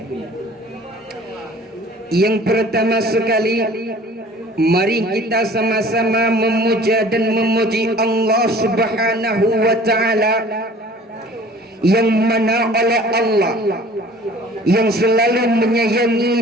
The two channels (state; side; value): normal; both; correlation 0.48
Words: Yang pertama sekali, mari kita sama-sama memuja dan memuji Allah Subhanahu wa ta'ala, yang mana oleh Allah yang selalu